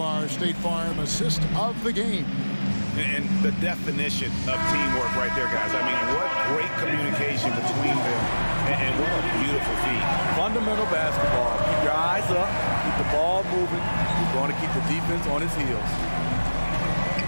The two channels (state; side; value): inverted; both; correlation -1.00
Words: State Farm assist of the game. And the definition of teamwork right there, guys. I mean, what great communication between them. And what a beautiful feat. Fundamental basketball. Keep your eyes up. Keep the ball moving. You're going to keep the defense on his heels.